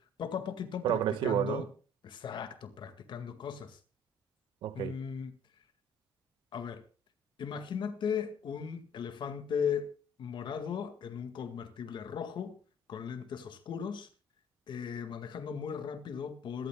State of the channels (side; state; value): both; normal; correlation 0.52